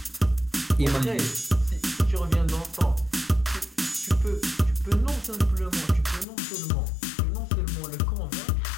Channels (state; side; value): drops out; right; at 6.2 s